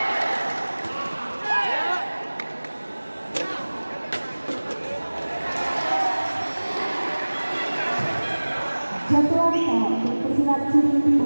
Jatuh harta untuk pesilat sudut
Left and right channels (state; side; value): inverted; both; correlation -1.00